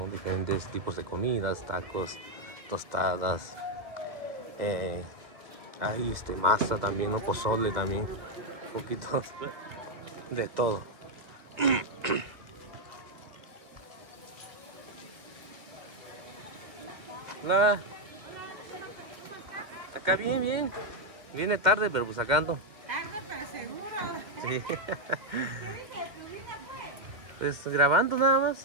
Diferentes tipos de comidas, tacos, tostadas. Hay masa también, ¿no? Pozole también. Un poquito de todo. Hola. Acá bien, bien. Viene tarde, pero pues acá ando. Tarde, pero seguro. Sí. ¿Qué dice de tu vida, pues? Pues grabando nada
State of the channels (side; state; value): left; late; 2.4 ms